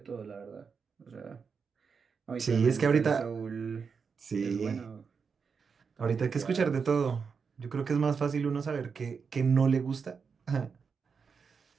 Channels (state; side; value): quieter; left; 5.7 dB